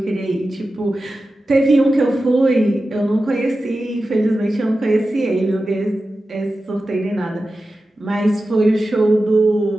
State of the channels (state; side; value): normal; both; correlation 0.93